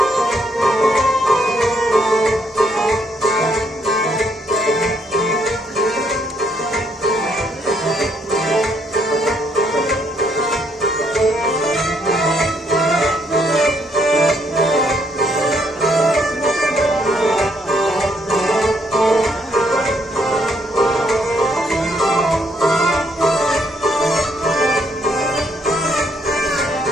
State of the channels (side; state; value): both; normal; correlation 0.71